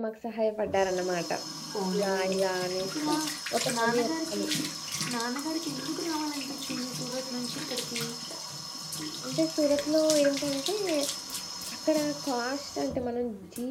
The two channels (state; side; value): identical; both; correlation 1.00